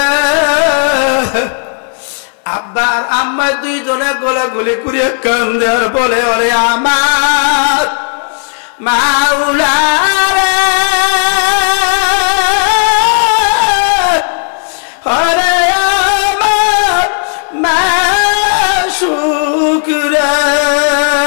আব্বা আর আম্মা দুইজনে গোলাগুলি করে কান্দে আর বলে ওরে আমার মাওলা রে, ওরে আমার মাশুক রে,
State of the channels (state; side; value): silent; right; 63 dB below the other